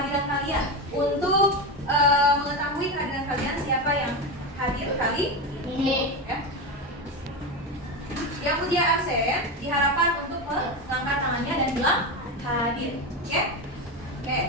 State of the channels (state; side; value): normal; both; correlation 0.16